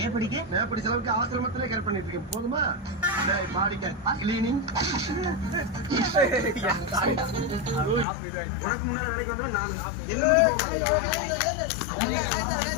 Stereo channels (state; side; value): drops out; right; at 8.1 s